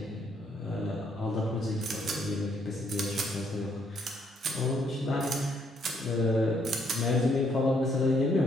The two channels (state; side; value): normal; both; correlation 0.70